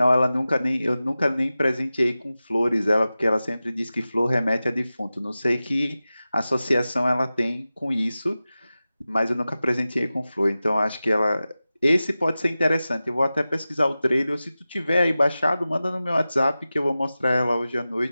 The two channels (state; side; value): inverted; both; correlation -0.95